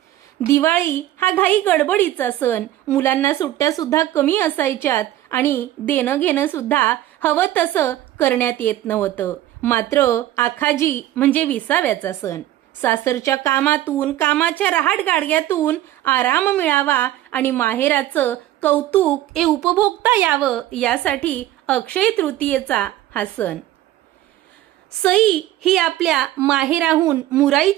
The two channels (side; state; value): left; quieter; 14.0 dB